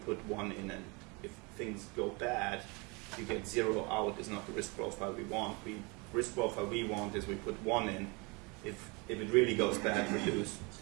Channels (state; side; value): quieter; left; 28.9 dB